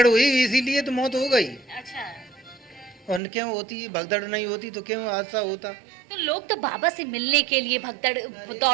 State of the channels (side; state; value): left; drops out; at 3.2 s